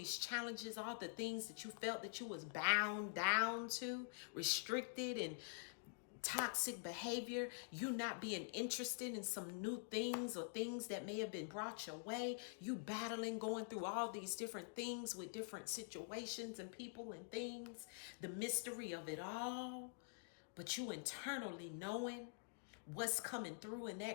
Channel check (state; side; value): silent; right; digital silence